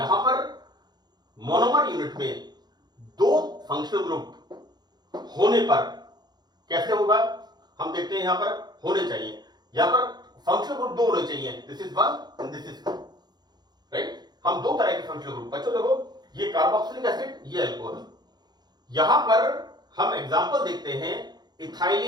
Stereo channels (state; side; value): late; left; 0.20 ms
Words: पर मोनोमर यूनिट में 2 फंक्शनल ग्रुप होने पर कैसे होगा, हम देखते हैं। यहां पर होने चाहिए, यहां पर फंक्शनल ग्रुप 2 होने चाहिए, this is 1 and this is 2, right. हम 2 तरह के फंक्शनल ग्रुप, बच्चों देखो ये कार्बोक्सिलिक एसिड, ये अल्कोहल। यहां पर हम एग्जांपल देखते हैं